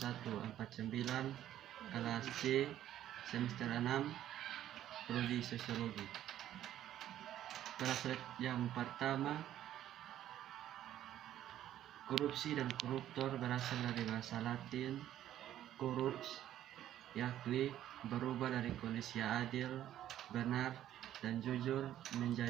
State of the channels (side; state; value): left; quieter; 12.0 dB